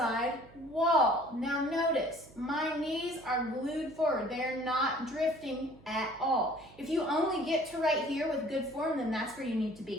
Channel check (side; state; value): right; noise; hum, 24 dB below the sound